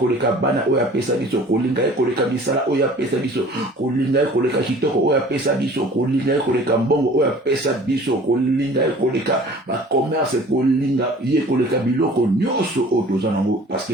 bana oyo apesa biso kolinga ye koleka misala oyo apesa biso kolinga ye koleka kitoko oyo apesa biso kolinga ye koleka mbongo oyo apesa biso kolinga ye koleka bacommerce kolinga ye koleka biloko nyonso oyo toza nango parce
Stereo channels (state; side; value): normal; both; correlation 0.48